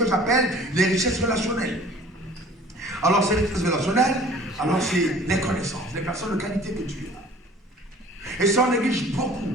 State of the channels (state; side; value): normal; both; correlation 0.49